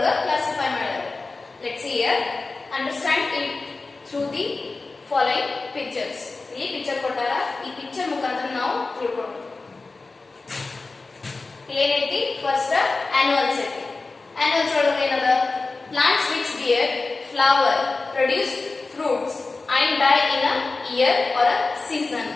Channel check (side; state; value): right; quieter; 3.7 dB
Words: ಕ್ಲಾಸಿಫೈ ಮಾಡ್ಯಾರ. Let's see here. Understand it through the following pictures. ಇಲ್ಲಿ ಪಿಕ್ಚರ್ ಕೊಟ್ಟಾರ. ಈ ಪಿಕ್ಚರ್ ಮುಖಾಂತರ ನಾವು ತಿಳ್ಕೊಂಡು ಏನೈತಿ? ಫಸ್ಟ್ ಆನ್ಯುವಲ್ಸ್ ಐತಿ. ಆನ್ಯುವಲ್ಸ್ ಒಳಗೆ ಏನದ? Plants which bear flower, produce fruits and die in a year or a season.